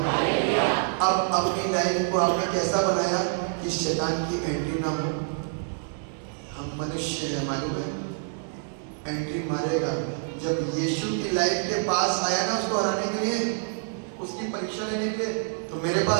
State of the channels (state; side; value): silent; left; digital silence